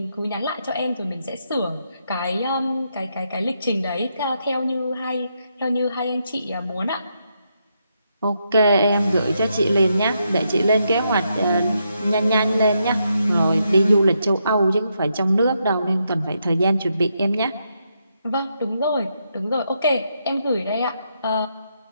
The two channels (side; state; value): both; inverted; correlation -0.80